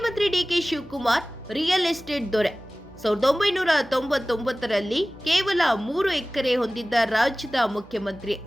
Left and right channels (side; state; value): both; normal; correlation 0.98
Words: ಡಿಕೆ ಶಿವಕುಮಾರ್ ರಿಯಲ್ ಎಸ್ಟೇಟ್ ದೊರೆ. 1999ರಲ್ಲಿ ಕೇವಲ 3 ಎಕರೆ ಹೊಂದಿದ್ದ ರಾಜ್ಯದ ಮುಖ್ಯಮಂತ್ರಿ